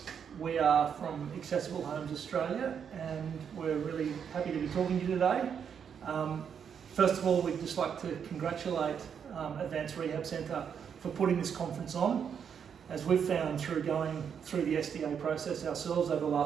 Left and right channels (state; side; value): quieter; left; 7.5 dB